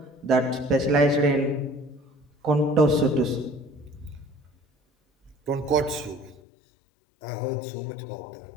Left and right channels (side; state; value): right; drops out; at 6.4 s